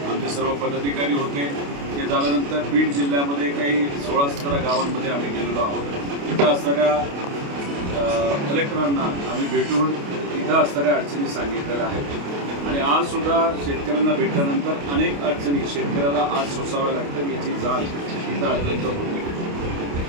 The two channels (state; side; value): late; left; 28 ms